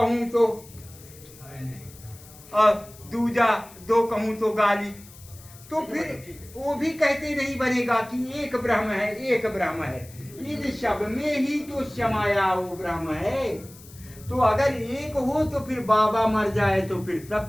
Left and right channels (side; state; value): left; noise; hiss, 21 dB below the sound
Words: तो और दूजा दो कहूं तो गाली। तो फिर वो भी कहते नहीं बनेगा कि एक ब्रह्म है, एक ब्रह्म है। इन सब में ही तो समाया वो ब्रह्म है। तो अगर एक हो तो फिर बाबा मर जाए तो फिर